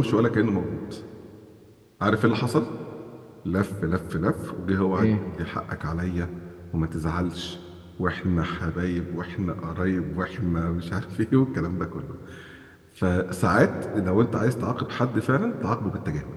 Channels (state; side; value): identical; both; correlation 1.00